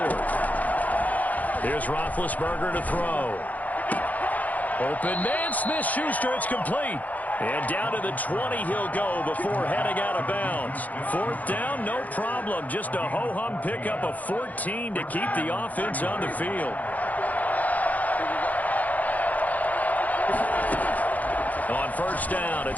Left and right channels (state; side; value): late; right; 0.078 ms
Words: Here's Roethlisberger to throw. Open man, Smith-Schuster, it's complete. And down to the 20 he'll go before heading out of bounds. 4th down, no problem. Just a ho-hum pickup of 14 to keep the offense on the field. On 1st down,